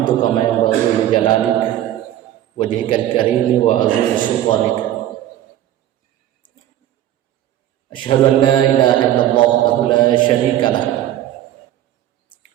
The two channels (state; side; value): quieter; left; 12.7 dB